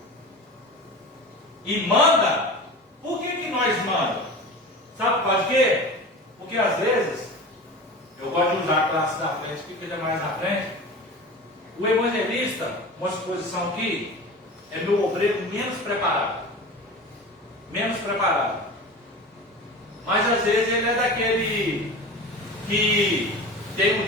E manda, por que nós mandamos? Sabe por quê? Porque às vezes, eu gosto de usar a classe da frente, porque ele é mais na frente. O evangelista, uma exposição aqui, é meu obreiro menos preparado. Menos preparado. Mas às vezes ele é daquele que tem um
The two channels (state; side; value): normal; both; correlation 0.33